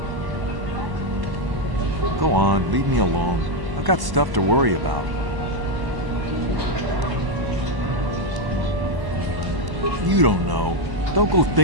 Go on, leave me alone. I've got stuff to worry about. You don't know. Don't go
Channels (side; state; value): left; late; 1.1 ms